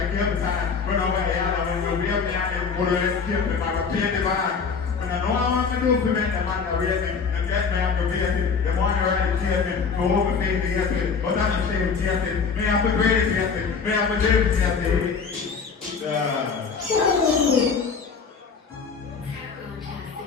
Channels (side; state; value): right; quieter; 5.5 dB